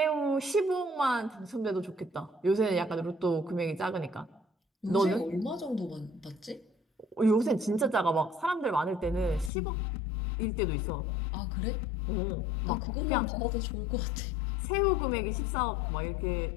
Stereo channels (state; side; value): drops out; right; at 9.5 s